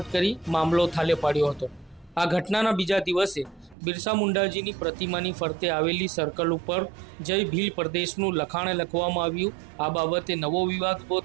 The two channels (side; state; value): left; drops out; at 3.8 s